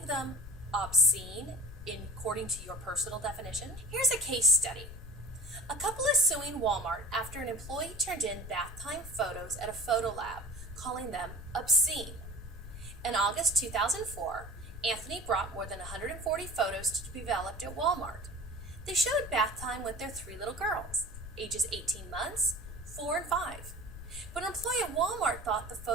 them obscene according to your personal definition? Here's a case study. A couple is suing Walmart after an employee turned in bath time photos at a photo lab, calling them obscene. In August 2004, Anthony brought more than 140 photos to be developed at Walmart. They showed bath time with their three little girls, ages 18 months, 4 and 5. But an employee at Walmart thought the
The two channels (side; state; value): left; noise; rumble, 12 dB below the sound